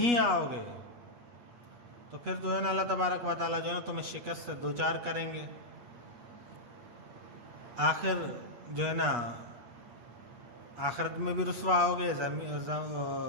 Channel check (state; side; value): late; left; 8.3 ms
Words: आओगे तो फिर जो है ना अल्लाह तबारक व तआला जो है तुम्हें शिकस्त से दो चार करेंगे। आखिर जो है ना आखिरत में भी रुसवा होगे,